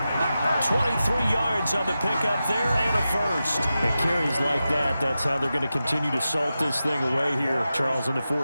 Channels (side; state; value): both; inverted; correlation -0.92